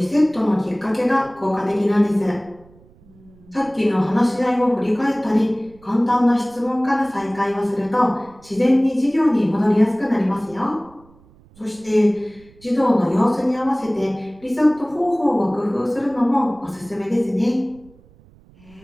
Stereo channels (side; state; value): right; noise; rumble, 27 dB below the sound